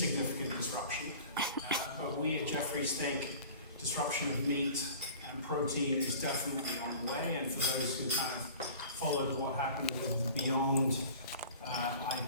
disruption. But we at Jefferies think disruption of meat and protein is definitely on the way. And for those who kind of followed what happened with the Beyond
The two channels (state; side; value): inverted; both; correlation -0.43